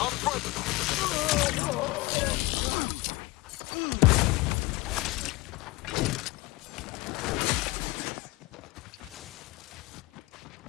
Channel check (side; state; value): right; quieter; 21.8 dB